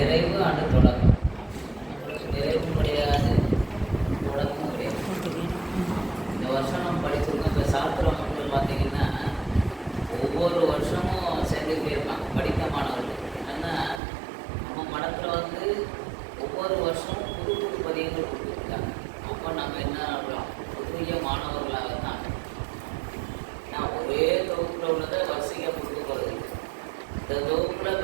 ஆண்டு தொடக்கம். நிறைவு கிடையாது, தொடக்கமும் கிடையாது. இந்த வருஷம் நம்ம படிச்சிருக்கோம். இப்போ சாஸ்திர மக்கள் பார்த்தீங்கன்னா ஒவ்வொரு வருஷமும் சேர்ந்துக்கிட்டே இருப்பாங்க படித்த மாணவர்கள். ஏன்னா நம்ம மடத்தில் வந்து ஒவ்வொரு வருஷமும் புது புது பதியங்கள் கொடுத்துருக்காங்க. அப்போ நம்ம என்ன ஆகலாம், புதிய மாணவர்களாக தான். நான் ஒரே தொகுப்பில் உள்ளதை வரிசையாக கொடுக்க போகிறது. இந்த தொகுப்பில்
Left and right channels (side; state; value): left; drops out; at 14.0 s